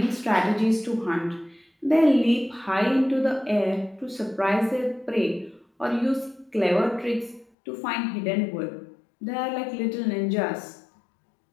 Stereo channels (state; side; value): drops out; right; at 7.5 s